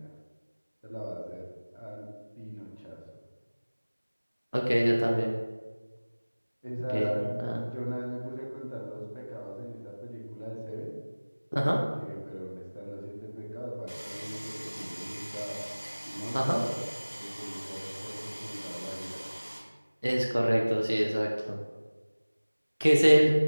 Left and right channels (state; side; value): inverted; both; correlation -1.00